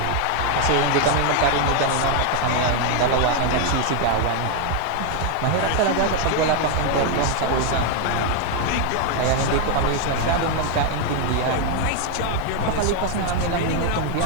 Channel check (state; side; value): different; both; correlation 0.01